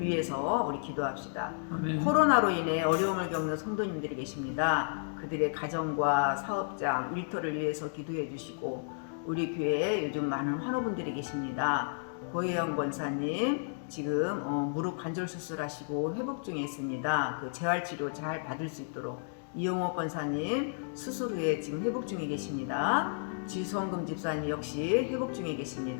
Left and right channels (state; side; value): silent; right; digital silence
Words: 위해서 우리 기도합시다. 아멘. 코로나로 인해 어려움을 겪는 성도님들이 계십니다. 그들의 가정과 사업장, 일터를 위해서 기도해 주시고 우리 교회에 요즘 많은 환우분들이 계십니다. 고혜영 권사님 지금 무릎 관절 수술하시고 회복 중에 있습니다. 그 재활치료 잘 받을 수 있도록 이용호 권사님 수술 후에 지금 회복 중에 계십니다. 지성금 집사님 역시 회복 중에